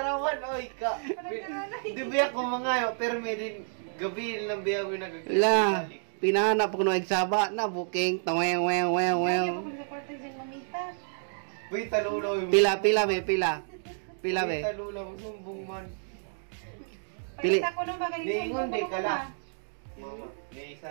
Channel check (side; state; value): left; silent; digital silence